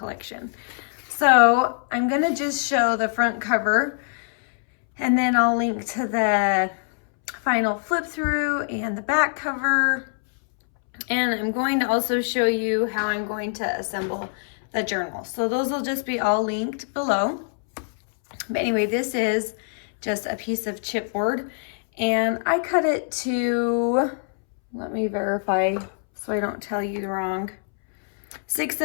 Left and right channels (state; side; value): silent; right; 63 dB below the other